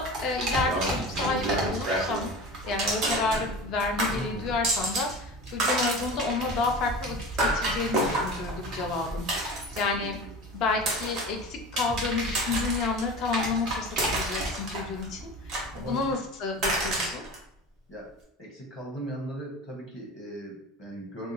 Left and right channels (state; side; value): normal; both; correlation 0.33